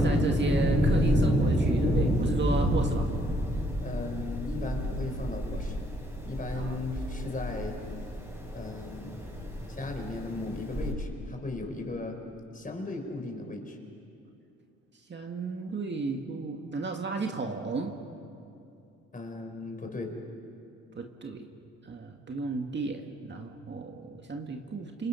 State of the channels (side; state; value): both; normal; correlation 0.67